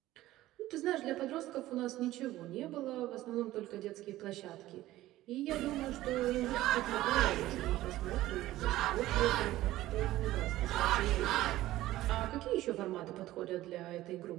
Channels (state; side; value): quieter; left; 15.7 dB